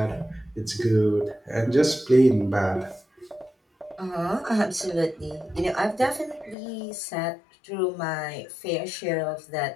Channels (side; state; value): right; drops out; at 6.6 s